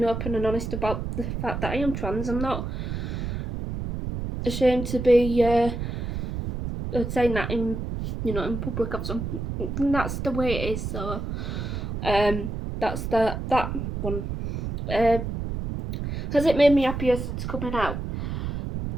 open and honest about the fact that I am trans. I'm not ashamed to be saying that in public or something. That's the way it is. So that's that one. Has it made me happier since coming out?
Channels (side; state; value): right; noise; rumble, 4 dB below the sound